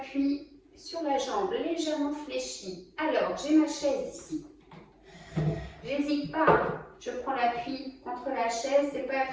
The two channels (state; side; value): identical; both; correlation 1.00